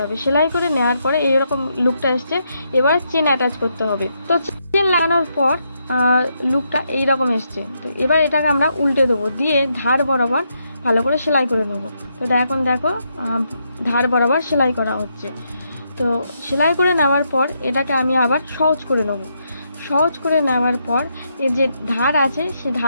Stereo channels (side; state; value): both; inverted; correlation -0.79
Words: হবে। সেলাই করে নেওয়ার পরে এইরকম লুকটা এসছে। এবার চেন অ্যাটাচ করতে হবে। তো চেন লাগানোর পর লুকটা এইরকম এসছে। তো এবার এটাকে আমরা উল্টে দেবো, দিয়ে ধার বরাবর ভালো করে সেলাই করে নেব। তো এখন দেখো ধার বরাবর সেলাই করা হচ্ছে। তো সেলাই করে নেওয়ার পর এটাকে আমি আবার সহজ করে নেব। সহজ করে নেওয়ার পর এর যে ধার আছে সে